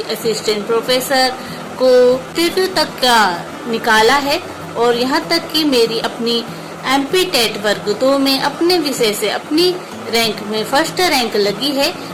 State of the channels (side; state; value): both; identical; correlation 1.00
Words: assistant professor को तृतीय तक का निकाला है और यहाँ तक कि मेरी अपनी एमपी टेट वर्ग 2 में अपने विषय से अपनी रैंक में फर्स्ट रैंक लगी है।